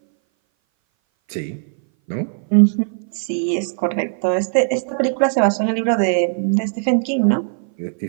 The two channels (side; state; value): left; silent; 60 dB below the other